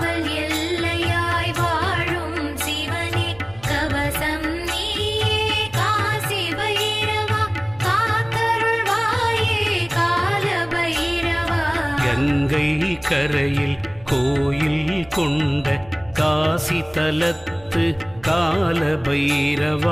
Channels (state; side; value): noise; right; hum, 24 dB below the sound